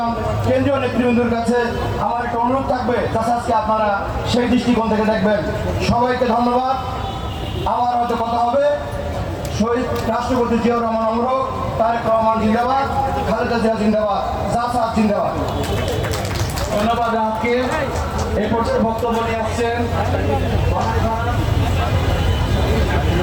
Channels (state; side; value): identical; both; correlation 1.00